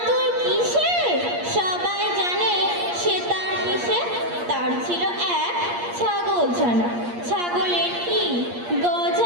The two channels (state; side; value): late; left; 8.5 ms